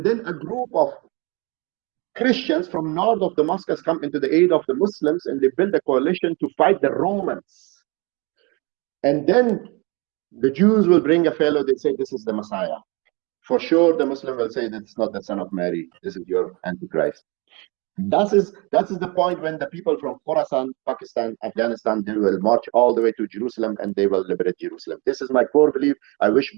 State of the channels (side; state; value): left; quieter; 28.3 dB